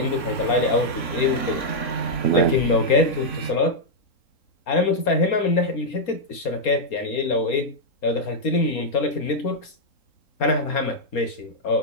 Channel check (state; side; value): late; right; 4.3 ms